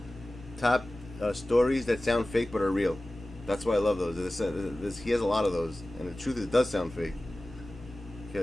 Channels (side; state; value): both; normal; correlation 0.97